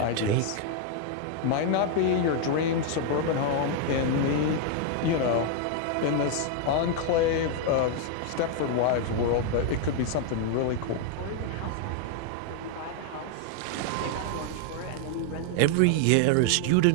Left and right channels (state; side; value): different; both; correlation 0.00